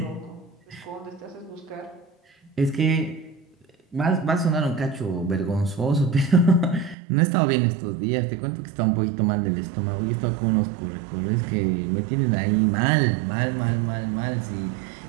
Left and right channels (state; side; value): drops out; left; at 7.0 s